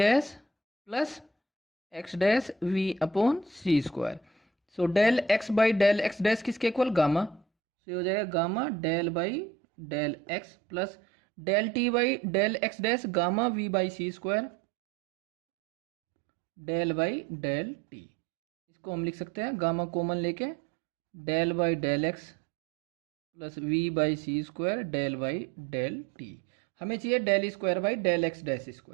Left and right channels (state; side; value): drops out; left; at 7.4 s